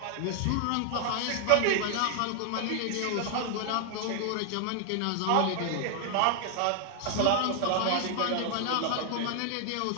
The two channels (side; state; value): both; different; correlation 0.00